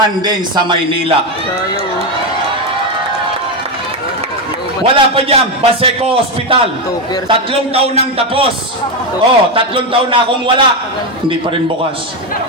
din sa Maynila. Wala pa dyan, Baseco Hospital. 3 taon nang tapos. 3 taon na akong wala. Hindi pa rin bukas.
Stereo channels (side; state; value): both; normal; correlation 0.09